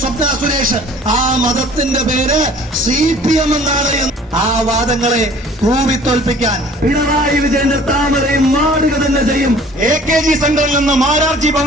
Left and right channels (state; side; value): normal; both; correlation 0.51